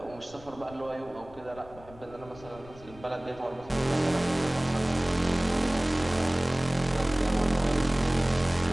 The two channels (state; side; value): noise; left; rumble, 20 dB below the sound